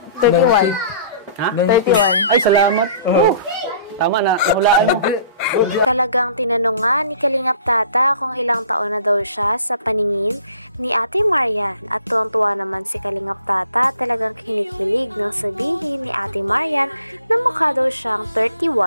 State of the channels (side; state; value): both; inverted; correlation -0.52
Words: 31. Ha? 31. Ay, salamat. Tama na, hulaan mo. Talagang tinanong nga ni Kalingap Tata kung ilang taon na daw siya sa paningin ni Ate Marian at tuwang-tuwa naman si Kalingap Tata talagang kinikilig nang sabihin ni Ate Marian na mukha daw siyang